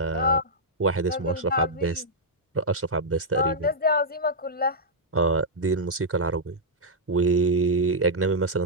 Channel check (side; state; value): both; normal; correlation -0.08